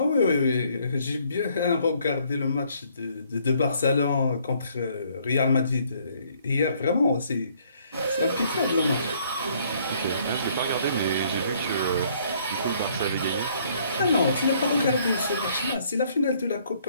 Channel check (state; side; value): inverted; both; correlation -0.64